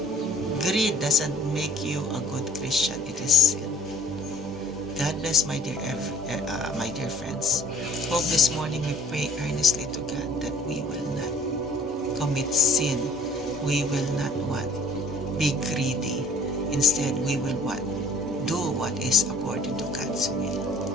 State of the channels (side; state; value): both; normal; correlation 0.53